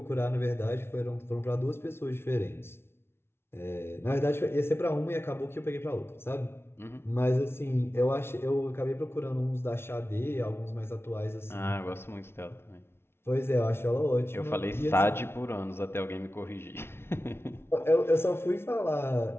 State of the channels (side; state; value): right; late; 0.12 ms